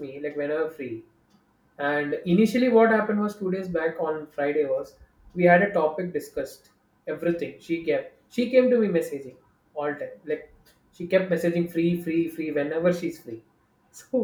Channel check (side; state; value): both; identical; correlation 1.00